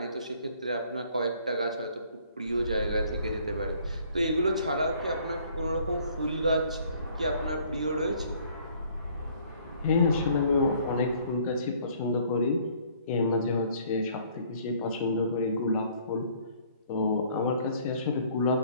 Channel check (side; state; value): both; inverted; correlation -0.60